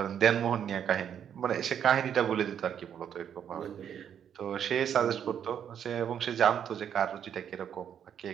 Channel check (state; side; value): quieter; left; 8.8 dB